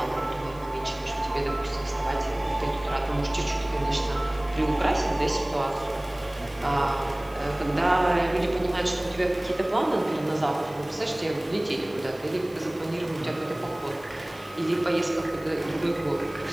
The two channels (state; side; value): noise; left; hiss, 25 dB below the sound